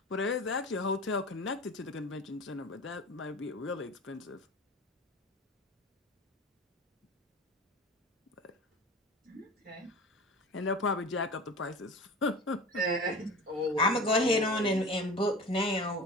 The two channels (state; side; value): normal; both; correlation 0.35